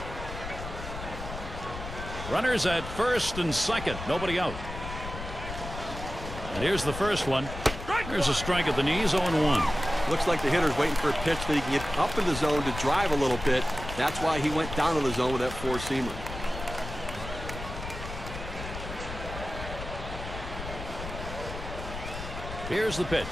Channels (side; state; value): left; noise; rumble, 9 dB below the sound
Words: Runners at first and second. Nobody out. And here's the first one. There's a strike at the knees, 0-1. Looks like the hitter's waiting for a pitch that he can get up in the zone to drive a little bit. That's why he went down to the zone with that four-seamer. Here's the pitch.